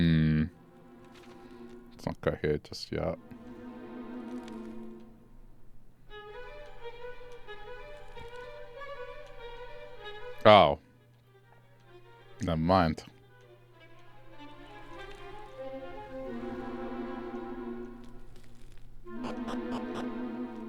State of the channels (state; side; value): identical; both; correlation 1.00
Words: Let's not go here just yet. Oh. Never mind.